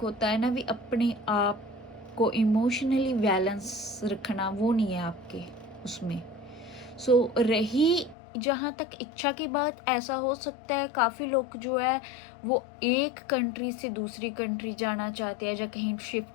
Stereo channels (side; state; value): right; drops out; at 8.2 s